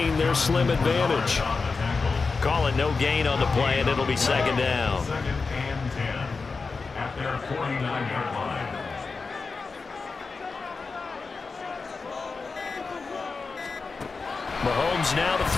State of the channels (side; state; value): right; quieter; 4.4 dB